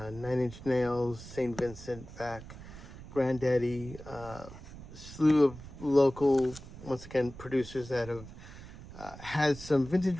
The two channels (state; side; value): noise; right; rumble, 15 dB below the sound